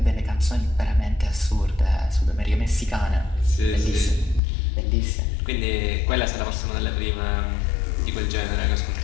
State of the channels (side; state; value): right; drops out; at 4.4 s